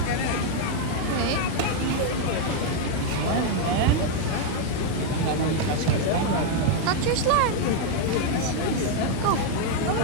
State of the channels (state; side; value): different; both; correlation 0.00